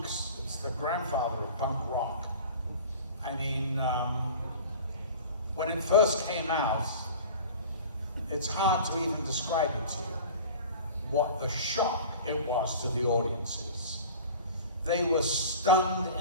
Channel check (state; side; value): inverted; both; correlation -0.39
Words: It's the grandfather of punk rock. I mean, when it first came out, it's hard to even describe it to you, what the shock it was to the audiences. they were stunned